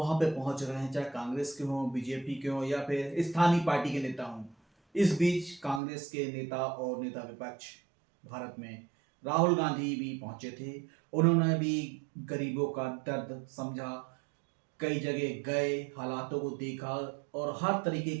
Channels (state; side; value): drops out; left; at 5.8 s